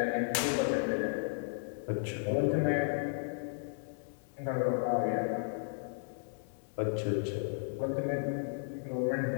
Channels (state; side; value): silent; right; digital silence